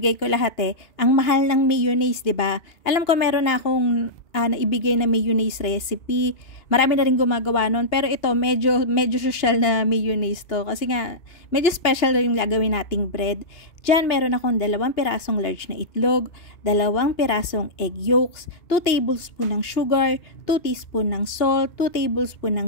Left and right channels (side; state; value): right; late; 2.8 ms